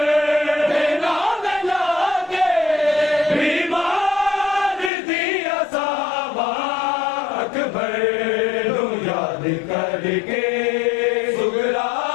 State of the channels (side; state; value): right; drops out; at 4.9 s